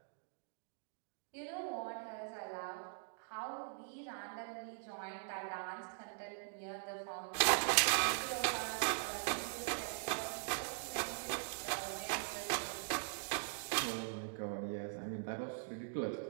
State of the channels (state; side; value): silent; left; digital silence